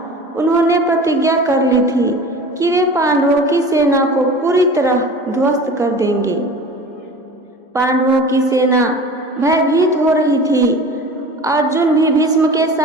उन्होंने प्रतिज्ञा कर ली थी कि वे पांडवों की सेना को पूरी तरह ध्वस्त कर देंगे। पांडवों की सेना भयभीत हो रही थी। अर्जुन भी भीष्म के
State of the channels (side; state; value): both; normal; correlation 0.38